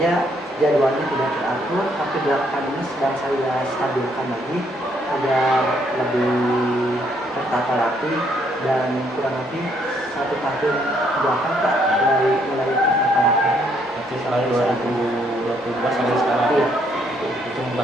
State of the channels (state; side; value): normal; both; correlation 0.70